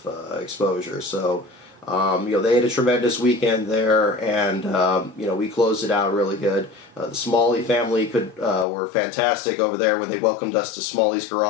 exposure. So, they had a tremendous weekend there, and we closed it out really good. The Smalley family were fantastic over there when they welcomed us to Smalley's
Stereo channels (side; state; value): right; drops out; at 8.7 s